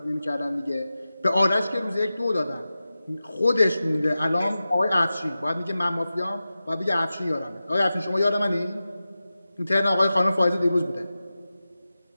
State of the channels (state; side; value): inverted; both; correlation -0.94